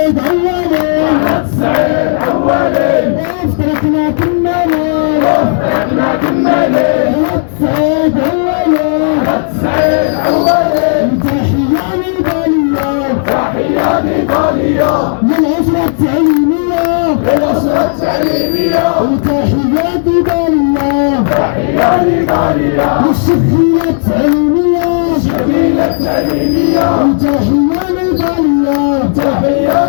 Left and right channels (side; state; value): right; silent; digital silence